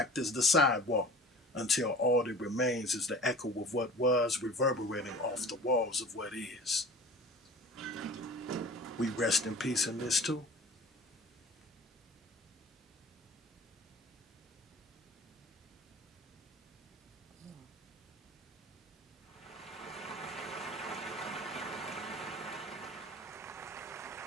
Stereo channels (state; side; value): normal; both; correlation 0.41